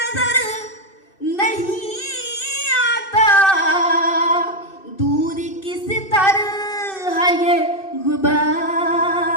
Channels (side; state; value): right; late; 2.6 ms